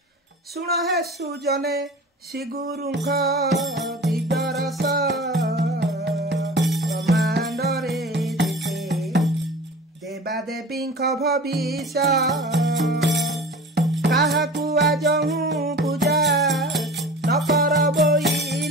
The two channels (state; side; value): normal; both; correlation 0.39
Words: शुण है सुजने श्रीगुरुख दिव्यरस ब्रह्मांडरे देवादेवी भविष्य काहाकु आजहु पूजा न कर